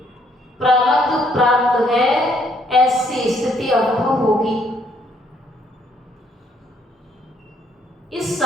प्रारब्ध प्राप्त है, ऐसी स्थिति अनुभव होगी। इस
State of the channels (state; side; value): normal; both; correlation 0.68